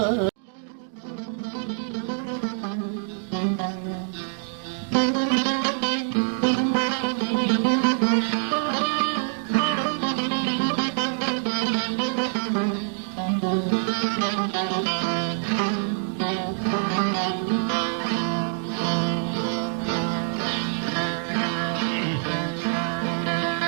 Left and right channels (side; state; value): left; silent; digital silence